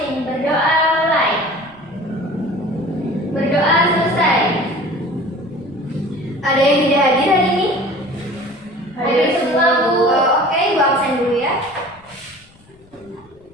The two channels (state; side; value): noise; left; rumble, 29 dB below the sound